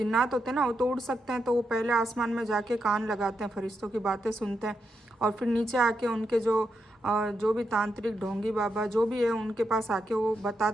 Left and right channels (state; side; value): normal; both; correlation 0.83